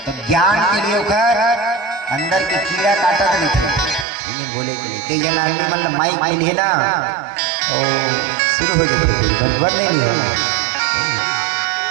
तो ज्ञान के लिए उखर अंदर के कीड़ा काटा नहीं थे, बोले के लिए कई जना आदमी मतलब माइक में लिए ना तो शुरू हो जाते बंद नहीं होना,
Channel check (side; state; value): left; drops out; at 4.0 s